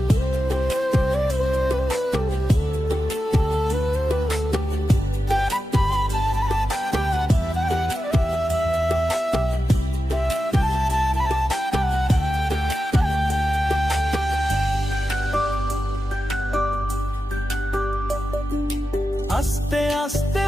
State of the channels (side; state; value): both; normal; correlation 0.91